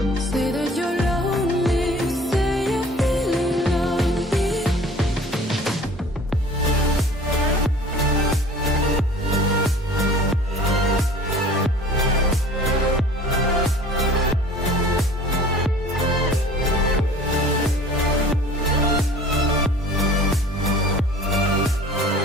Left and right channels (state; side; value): normal; both; correlation 0.46